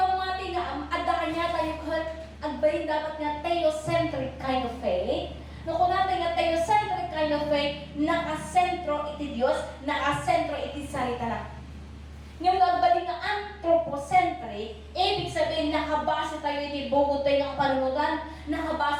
nga, adda kanya tayo agbayin dapat nga theocentric kind of faith. No, kung natin nga theocentric kind of faith, nakasentro iti Diyos, nakasentro iti sarita na. Yung agbayin nga anthropocentric, ibig sabihin nakabase tayo iti bugod tayo ng panunutan,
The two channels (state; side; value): identical; both; correlation 1.00